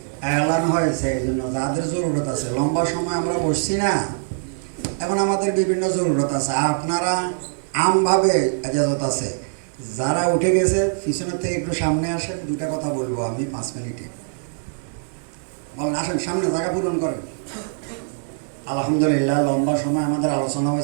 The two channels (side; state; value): left; silent; digital silence